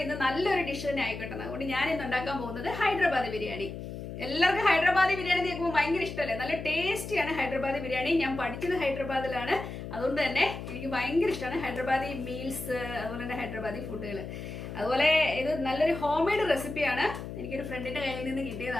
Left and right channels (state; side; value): noise; left; hum, 9 dB below the sound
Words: ഇന്ന് നല്ലൊരു ഡിഷ് തന്നെ ആയിക്കോട്ടെ. അതുകൊണ്ട് ഞാൻ ഇന്ന് ഉണ്ടാക്കാൻ പോകുന്നത് ഹൈദരാബാദി ബിരിയാണി. എല്ലാവർക്കും ഹൈദരാബാദി ബിരിയാണി കേൾക്കുമ്പോൾ ഭയങ്കര ഇഷ്ടമല്ലേ? നല്ല ടേസ്റ്റിയാണ് ഹൈദരാബാദി ബിരിയാണി. ഞാൻ പഠിച്ചത് ഹൈദരാബാദിലാണ്, അതുകൊണ്ട് തന്നെ എനിക്ക് ഭയങ്കര ഇഷ്ടമാണ് ഹൈദരാബാദി മീൽസ്, അതുപോലെ തന്നെ ഹൈദരാബാദി ഫുഡുകൾ. അതുപോലെ ഇത് നല്ലൊരു ഹോം മെയ്ഡ് റെസിപ്പിയാണ്, എനിക്കൊരു ഫ്രണ്ടിന്റെ കയ്യിൽ നിന്ന്